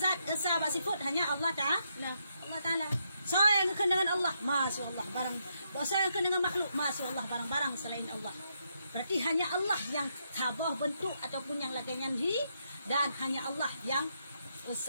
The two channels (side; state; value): both; inverted; correlation -0.78